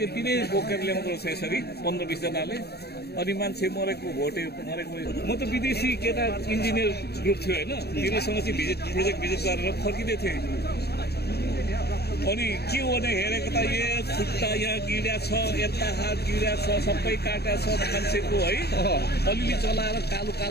नै बोकेर ल्याउँदो रहेछ यसरी 15-20 जनाले। अनि मान्छे मरेको म त विदेशी केटा इन्जिनियर ग्रुप थियो होइन, तिनीसँग चाहिँ प्रोजेक्ट भिजिट गरेर फर्किँदै थिएँ। अनि के हो भने हेरेको त खुट्टा यहाँ गिरा छ, यता हात गिरा छ, सबै काटा छ मान्छेको है। अलिअलि चलाएर कालो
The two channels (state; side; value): late; right; 0.47 ms